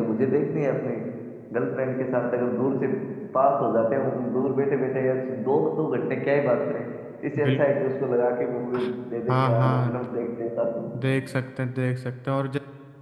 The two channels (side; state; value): both; identical; correlation 1.00